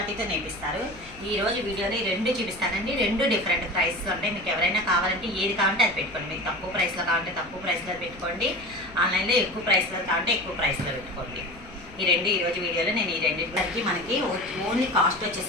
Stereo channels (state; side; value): noise; left; rumble, 20 dB below the sound